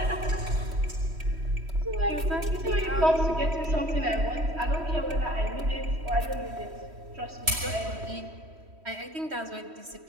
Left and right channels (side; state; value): left; late; 3.1 ms